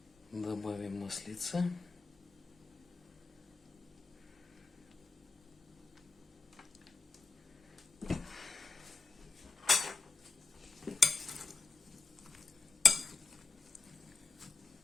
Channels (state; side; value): quieter; right; 3.7 dB